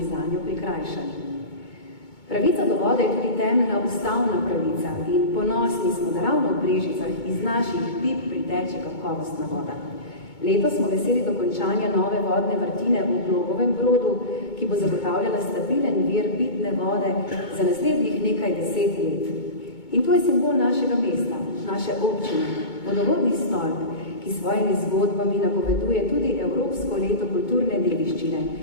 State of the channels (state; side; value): late; right; 2.2 ms